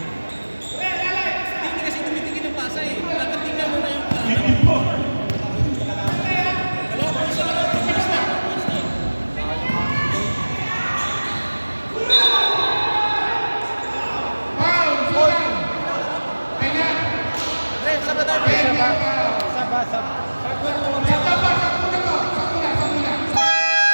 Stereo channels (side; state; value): both; inverted; correlation -1.00